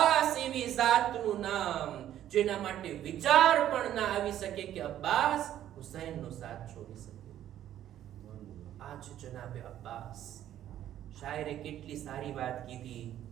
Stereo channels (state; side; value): quieter; left; 11.7 dB